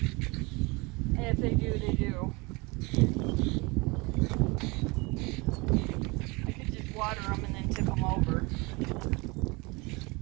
And if they do, they do. I could just water them and then tip them over.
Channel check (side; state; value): left; quieter; 26.5 dB